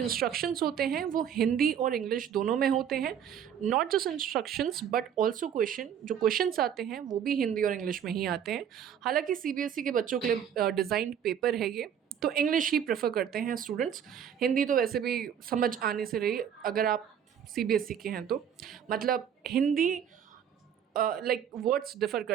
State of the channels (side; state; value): left; quieter; 8.8 dB